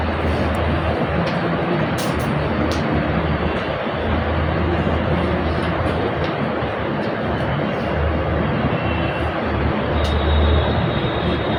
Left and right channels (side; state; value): both; identical; correlation 1.00